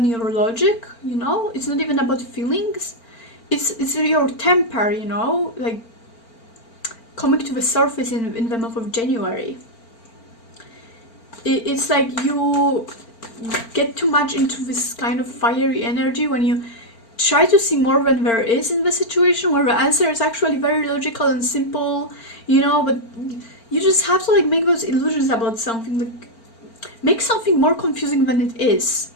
your logic, you know? It's not even about feelings. It's your temper, you know, like coming to the surface in the month of January. It's like you get too much into this kind of fiery energy when you try to see more than there is in the situation, where the answer is actually very logical and simple, you know, but you just have to like make those illusions about something, like make something more confusing than it is.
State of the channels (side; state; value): right; late; 4.4 ms